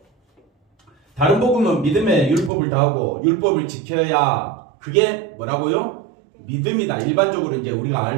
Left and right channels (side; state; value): left; drops out; at 2.5 s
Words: 다른 복음은 믿음의 율법을 다하고 율법을 지켜야, 그게 뭐라고요? 믿음이다. 일반적으로 이제 우리가